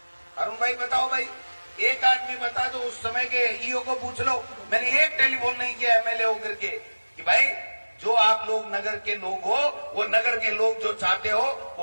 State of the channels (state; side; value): inverted; both; correlation -1.00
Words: अरुण भाई बताओ भाई, एक आदमी बता दो, उस समय के ईओ को पूछ लो। मैंने एक टेलीफोन नहीं किया एमएलए होकर के कि भाई जो आप लोग नगर के लोग हो, वो नगर के लोग जो चाहते हो